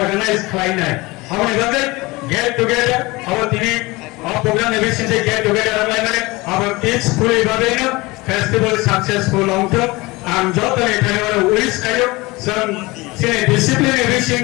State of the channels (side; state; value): right; quieter; 22.6 dB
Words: khlaina amone babe get together our tini program eviction se get together amai mane our peacefully babe no festival successful long term and joto ekhane mane wish kayo some discipline eviction